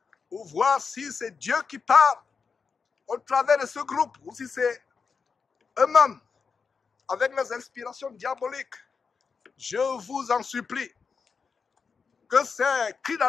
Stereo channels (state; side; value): quieter; right; 5.4 dB